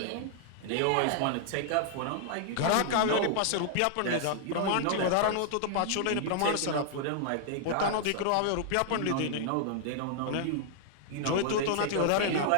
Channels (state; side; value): different; both; correlation -0.01